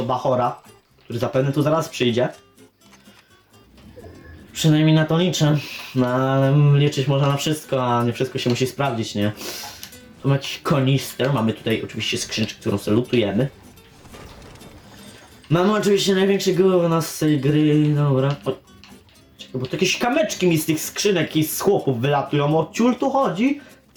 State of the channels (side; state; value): both; identical; correlation 1.00